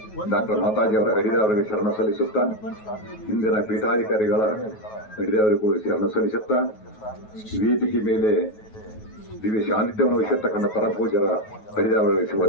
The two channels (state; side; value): late; right; 9.3 ms